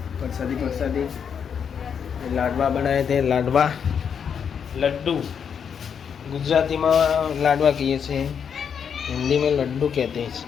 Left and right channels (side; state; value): right; quieter; 7.3 dB